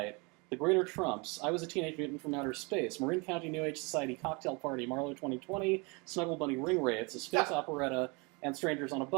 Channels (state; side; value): quieter; left; 29.6 dB